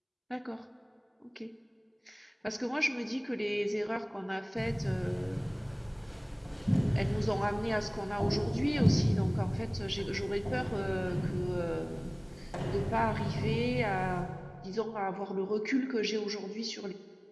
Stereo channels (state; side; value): identical; both; correlation 1.00